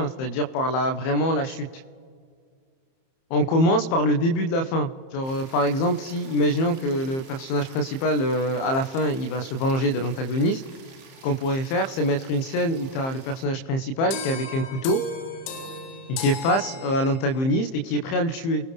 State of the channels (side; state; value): right; late; 30 ms